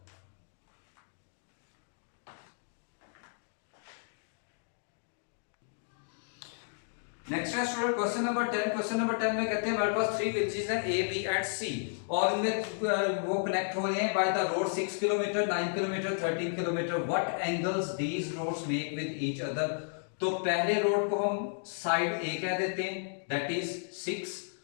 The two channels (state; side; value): silent; right; digital silence